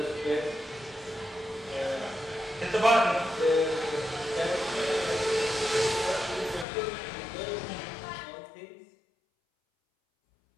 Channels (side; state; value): right; drops out; at 6.7 s